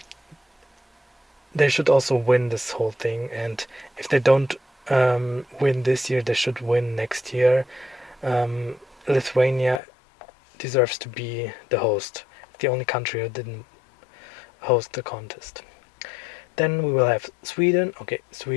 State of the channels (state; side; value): drops out; right; at 9.8 s